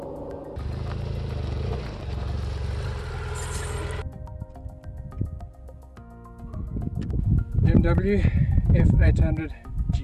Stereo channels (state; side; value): identical; both; correlation 1.00